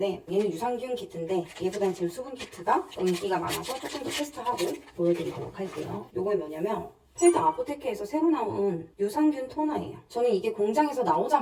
얘는 유산균 키트인데 얘보다는 지금 수분 키트가 인기가 많아서 조금 더 테스트하고 보여드리도록 할게요. 요거 뭐냐면 펠드 아포테케에서 새로 나온 유산균 토너예요. 저는 이게 공장에서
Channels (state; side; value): identical; both; correlation 1.00